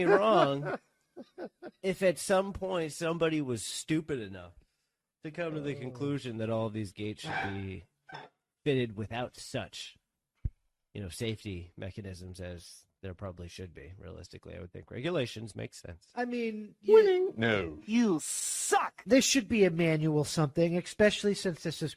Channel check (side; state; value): both; identical; correlation 1.00